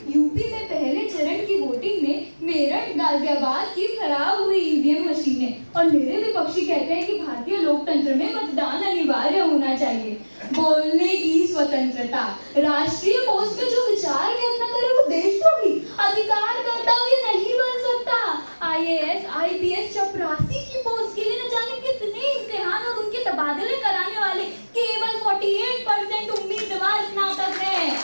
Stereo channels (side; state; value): both; inverted; correlation -1.00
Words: यूपी में पहले चरण की वोटिंग में मेरठ गाजियाबाद की खराब हुई ईवीएम मशीनें, और मेरे विपक्षी कहते हैं कि भारतीय लोकतंत्र में मतदान अनिवार्य होना चाहिए। बोलने की स्वतंत्रता, राष्ट्रीय पोस्ट में जो विचार व्यक्त न करे वो देशद्रोही, अधिकार कर्तव्य नहीं बन सकता। IAS IPS चपरासी की पोस्ट के लिए न जाने कितने इम्तिहान और उनके तबादले कराने वाले केवल 48% उम्मीदवार स्नातक हैं।